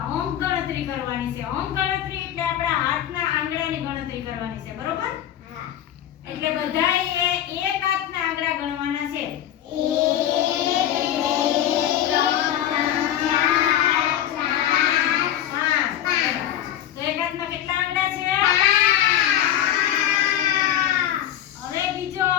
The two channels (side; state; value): right; quieter; 11.3 dB